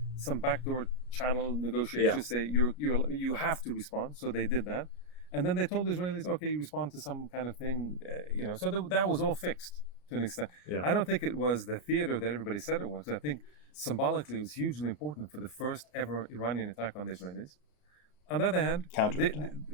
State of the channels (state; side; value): late; right; 33 ms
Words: some backdoor channel negotiations. Say you have to respond, so they did that, and then they told the Israelis, okay, you respond to some kind of thing, So that was all fixed to an extent. Yeah. I don't think it was the theater that everybody said it was. I think symbolically it was hugely important for the first ever Iranian attack on the Israelis. On the other hand,